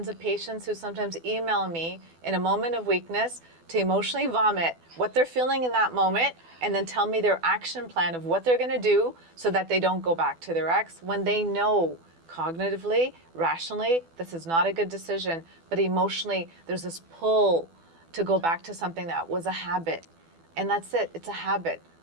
of patients who sometimes email me in a moment of weakness to emotionally vomit what they're feeling in that moment and then tell me their action plan of what they're going to do so that they don't go back to their ex when they know cognitively, rationally, this is not a good decision, but emotionally there's this pull to go back to something that was a habit. And that's it, it's a habit.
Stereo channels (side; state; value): left; late; 12 ms